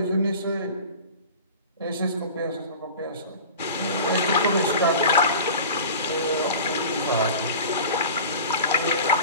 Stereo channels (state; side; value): inverted; both; correlation -0.37